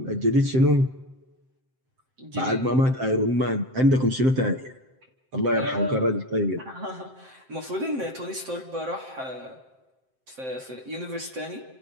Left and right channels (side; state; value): left; late; 7.7 ms